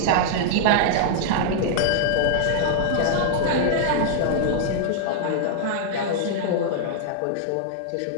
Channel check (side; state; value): both; different; correlation -0.01